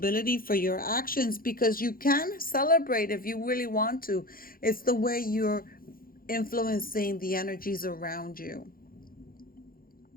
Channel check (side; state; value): right; late; 0.42 ms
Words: for your actions, because you can celebrate if you really want to. It's the way you're influencing the energies around you.